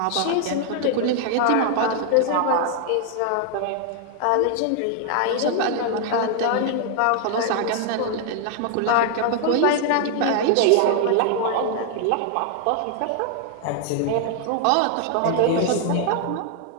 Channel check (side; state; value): both; different; correlation 0.00